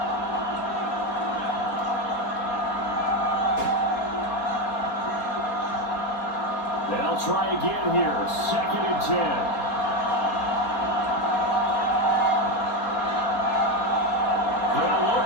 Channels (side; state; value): right; late; 4.2 ms